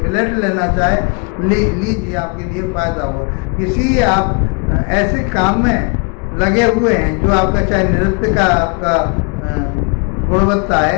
लेना चाहे लीजिए, आपके लिए फायदा होगा। किसी आप ऐसे काम में लगे हुए हैं जो आपका, चाहे नृत्य का आपका गुणवत्ता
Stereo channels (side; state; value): right; quieter; 35.9 dB